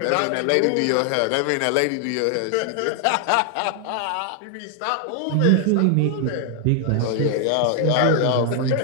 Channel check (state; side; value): different; both; correlation 0.00